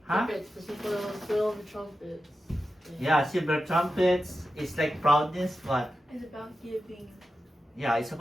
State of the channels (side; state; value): both; normal; correlation 0.91